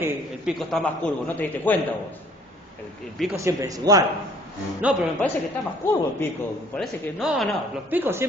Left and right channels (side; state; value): both; normal; correlation 0.56